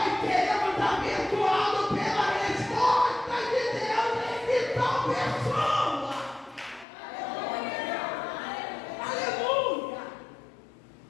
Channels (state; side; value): drops out; right; at 6.9 s